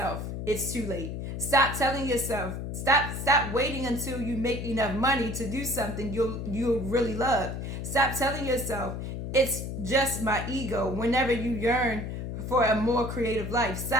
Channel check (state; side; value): noise; left; hum, 5 dB below the sound